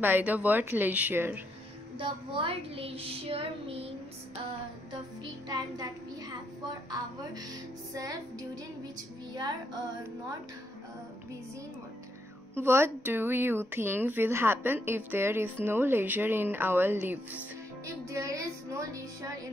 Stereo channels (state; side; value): normal; both; correlation 0.77